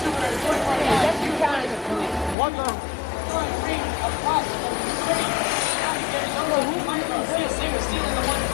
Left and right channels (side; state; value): right; drops out; at 2.4 s